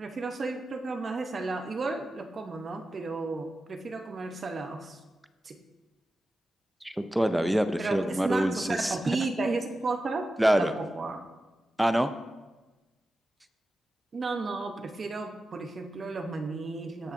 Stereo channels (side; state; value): both; normal; correlation 0.92